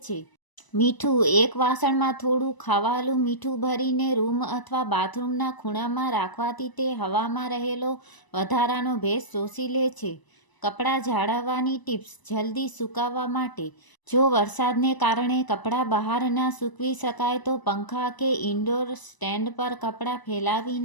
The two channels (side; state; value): right; late; 1.0 ms